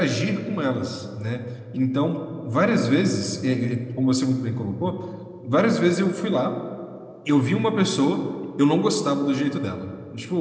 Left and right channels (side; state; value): both; identical; correlation 1.00